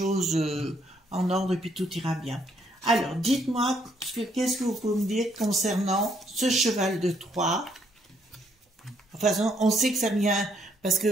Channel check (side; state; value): both; normal; correlation 0.70